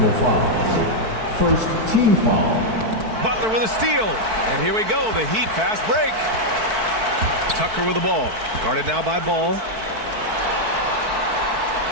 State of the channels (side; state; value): left; late; 4.6 ms